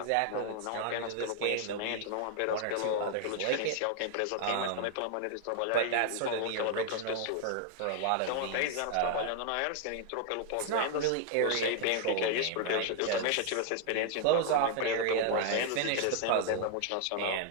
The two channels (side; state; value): both; different; correlation 0.00